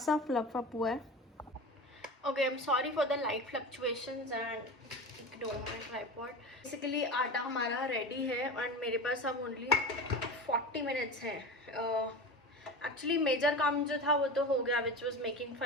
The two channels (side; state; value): both; normal; correlation 0.29